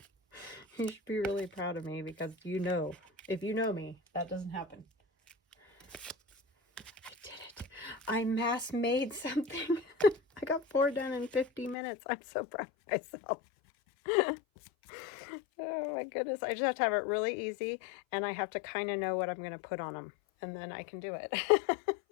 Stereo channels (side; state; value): right; drops out; at 11.8 s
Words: You should be really proud of me because you know, if you know me, that doesn't happen. I did it. I mass made something. I got 4 done in 50 minutes. I'm so proud of myself. Oh my goodness. I just have to have it really easy and I have to kind of know what I'm going to put on them and then I can do it.